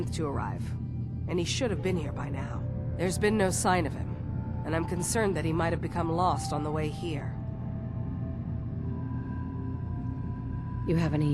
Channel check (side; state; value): both; identical; correlation 1.00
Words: to arrive, and he should have been here by now. There's been no sign of him, and I'm concerned that he might have become lost on the way here. You have